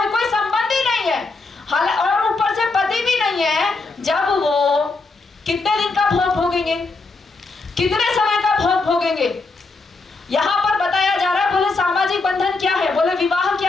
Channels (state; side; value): quieter; right; 3.7 dB